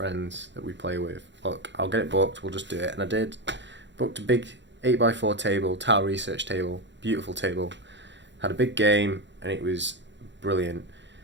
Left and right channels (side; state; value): left; late; 0.52 ms